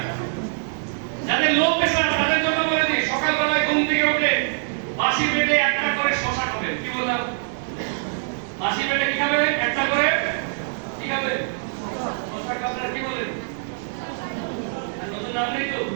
যাদের লো প্রেসার তাদের জন্য বলে দিই, সকালবেলায় ঘুম থেকে উঠে বাসি পেটে একটা করে শসা খাবেন। কি বললাম? বাসি পেটে কি খাবেন? একটা করে কি খাবেন? শসা খাবেন। কি বলেন? নতুন নাম নেই তো?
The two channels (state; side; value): silent; left; 63 dB below the other